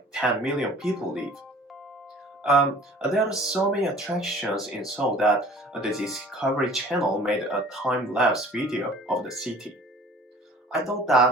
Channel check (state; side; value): normal; both; correlation 0.48